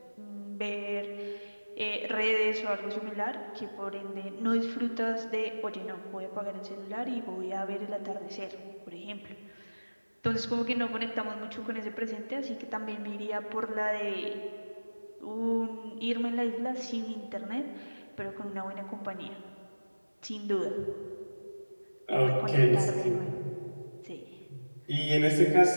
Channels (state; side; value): inverted; both; correlation -1.00